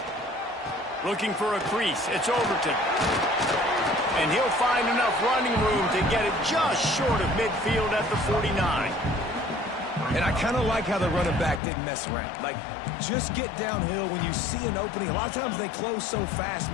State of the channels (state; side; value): drops out; right; at 11.6 s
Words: Looking for a crease. It's Overton. And he'll find enough running room to get it just short of midfield at the 49. And I kind of like how the running back didn't mess around. Like, just get downhill when you see an opening. A lot of times they close so fast,